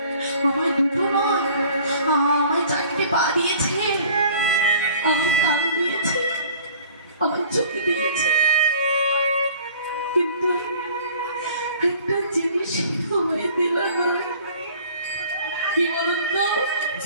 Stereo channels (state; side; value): inverted; both; correlation -0.50